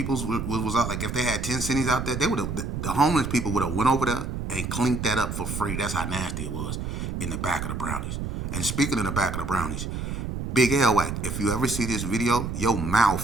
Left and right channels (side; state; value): right; noise; rumble, 4 dB below the sound